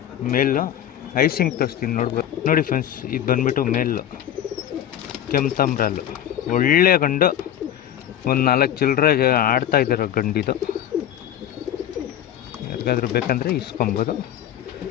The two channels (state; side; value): quieter; right; 10.8 dB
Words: ಮೇಲು. ಐಸಿಂಗ್ ತೋರಿಸ್ತೀನಿ ನೋಡ್ಬೋದು. ನೋಡಿ ಫ್ರೆಂಡ್ಸ್, ಇದು ಬಂದ್ಬಿಟ್ಟು ಮೇಲು ಕೆಂಪ್ತಾಮ್ರಲ್ಲು ಒಳ್ಳೆ ಗಂಡು. ಒಂದು 4 ಚಿಲ್ಲರೆ ಆಡ್ತಾ ಇದ್ದಾರೋ ಗಂಡಿದು. ಯಾರಿಗಾದ್ರೂ ಬೇಕಂದರೆ ಇಸ್ಕೊಬೋದು.